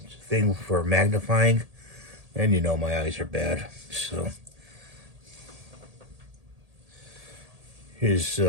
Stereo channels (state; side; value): late; left; 1.8 ms